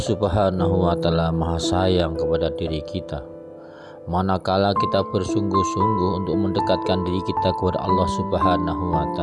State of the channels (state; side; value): identical; both; correlation 1.00